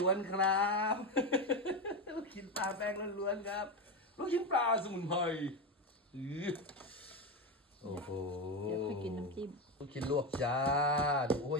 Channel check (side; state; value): both; normal; correlation 0.15